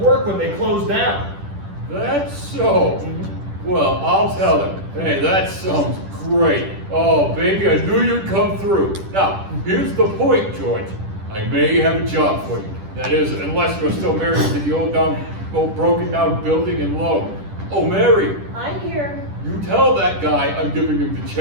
when they closed down. That's so. Well, I'll tell him. Hey, that sounds great. Oh, baby, I knew you'd come through. Now, here's the point, George. I may have a job for you. That is, unless you're still married to the old broken down building in Lowe. Oh, Mary, I'm here. you tell that guy I'm giving him the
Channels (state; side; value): late; left; 10 ms